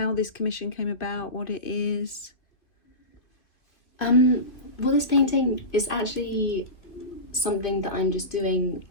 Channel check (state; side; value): late; right; 2.5 ms